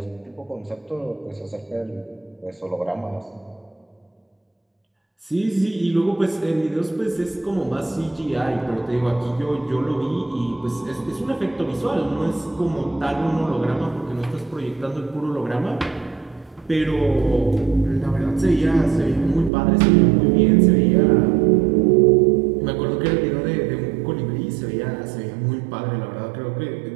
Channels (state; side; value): drops out; left; at 19.5 s